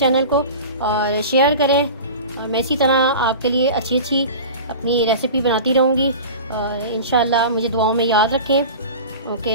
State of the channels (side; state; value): both; inverted; correlation -0.34